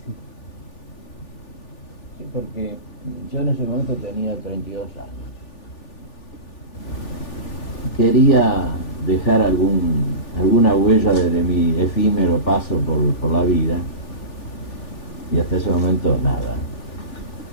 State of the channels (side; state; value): right; late; 3.4 ms